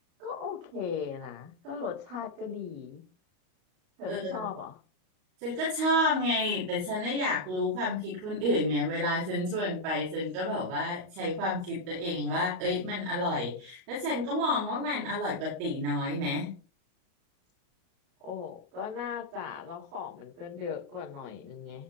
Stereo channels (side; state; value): left; late; 38 ms